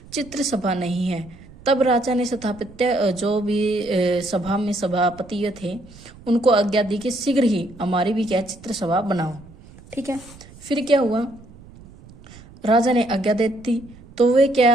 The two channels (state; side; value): noise; right; rumble, 21 dB below the sound